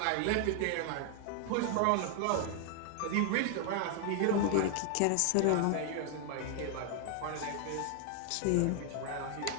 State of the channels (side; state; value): both; different; correlation 0.00